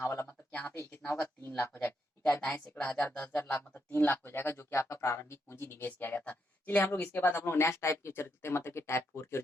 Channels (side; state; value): both; normal; correlation 0.79